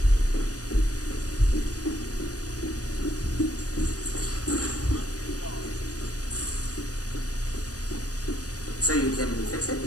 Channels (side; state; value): right; late; 0.67 ms